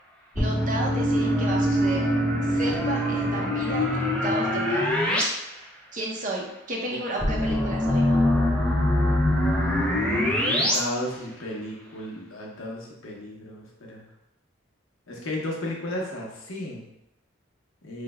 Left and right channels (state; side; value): normal; both; correlation 0.65